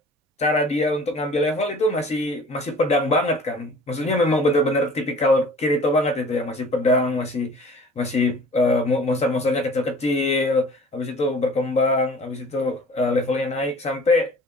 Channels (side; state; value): both; normal; correlation 0.47